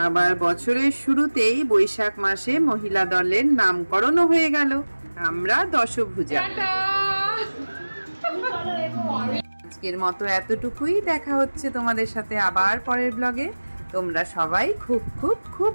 আবার বছরের শুরুতেই বৈশাখ মাসে মহিলা দলের নামকরণও হয়ে গেল। আমরা দশভুজা। আজকের মতো এতটুকুই। দেখা হচ্ছে তোমাদের সাথে আবার পরের ব্লগে। তোমরা সবাই খুব খুব খুব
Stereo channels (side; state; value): both; inverted; correlation -1.00